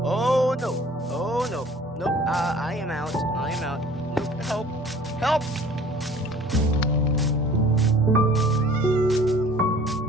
Oh no! Oh no! Nope, I am out. I am out. Nope, help! Help!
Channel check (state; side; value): normal; both; correlation 0.49